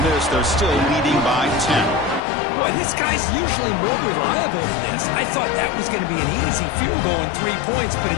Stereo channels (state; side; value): drops out; right; at 2.2 s